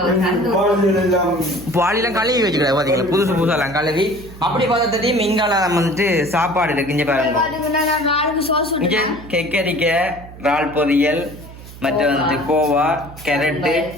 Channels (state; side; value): noise; right; hum, 17 dB below the sound